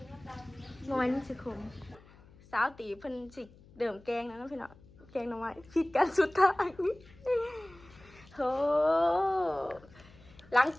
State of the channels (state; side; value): noise; left; hum, 24 dB below the sound